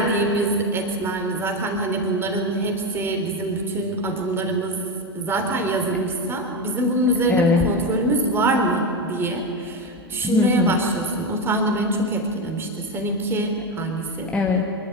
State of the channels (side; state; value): both; normal; correlation 0.14